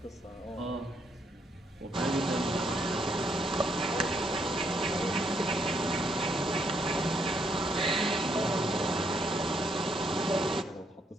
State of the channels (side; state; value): both; normal; correlation 0.73